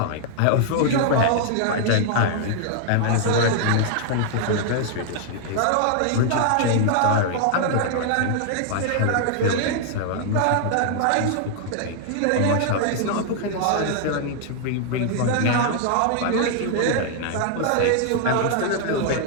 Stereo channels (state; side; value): different; both; correlation 0.00